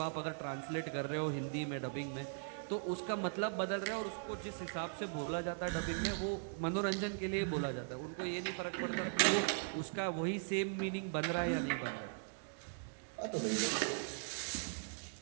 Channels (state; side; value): silent; left; digital silence